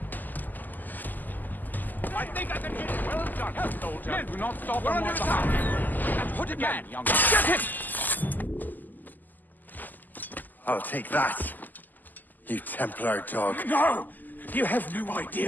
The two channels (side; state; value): right; late; 0.085 ms